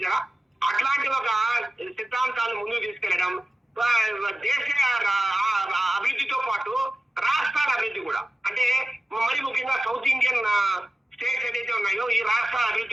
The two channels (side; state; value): both; normal; correlation 0.95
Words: అట్లాంటి ఒక సిద్ధాంతాలను ముందుకు తీసుకెళ్లడం, దేశ అభివృద్ధితో పాటు రాష్ట్రాల అభివృద్ధి కూడా, అంటే మరి ముఖ్యంగా సౌత్ ఇండియన్ స్టేట్స్ ఏదైతే ఉన్నాయో ఈ రాష్ట్రాల